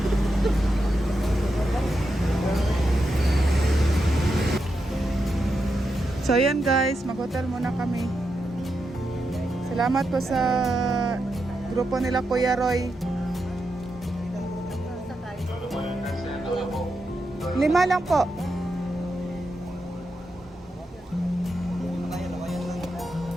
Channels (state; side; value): normal; both; correlation 0.86